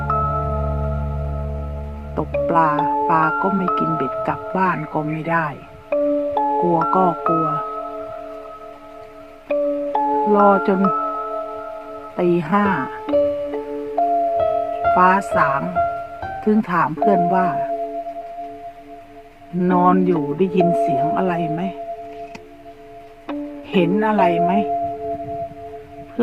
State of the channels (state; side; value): identical; both; correlation 1.00